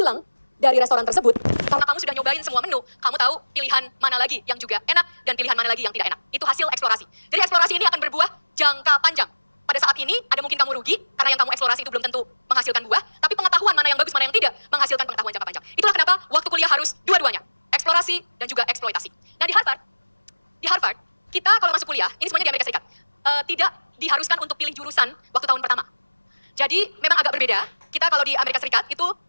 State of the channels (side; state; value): both; inverted; correlation -1.00